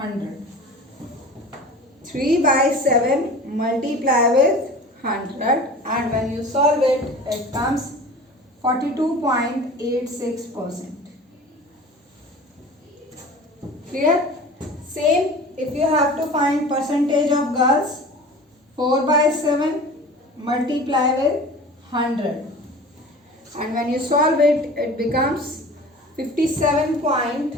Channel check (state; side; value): normal; both; correlation 0.39